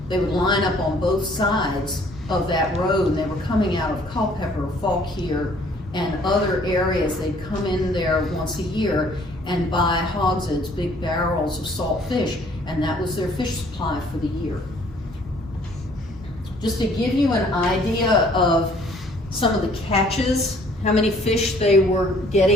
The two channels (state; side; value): normal; both; correlation 0.59